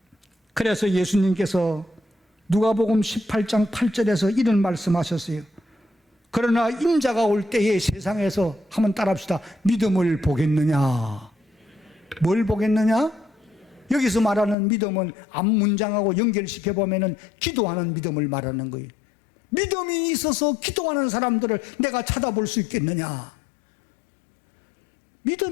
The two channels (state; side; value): drops out; right; at 14.6 s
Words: 그래서 예수님께서 누가복음 18장 8절에서 이런 말씀하셨어요. 그러나 인자가 올 때에 세상에서 한번 따라합시다. 믿음을 보겠느냐? 뭘 보겠느냐? 여기서 말하는 믿음은 앞 문장하고 연결시켜 보면은 기도하는 믿음을 말하는 거예요. 믿음이 있어서 기도하는 사람들을 내가 찾아볼 수 있겠느냐?